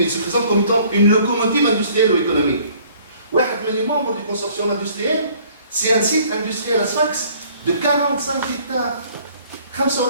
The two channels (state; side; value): inverted; both; correlation -0.57